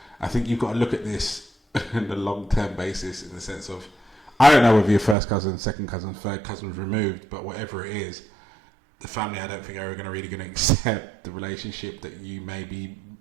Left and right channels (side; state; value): left; drops out; at 5.2 s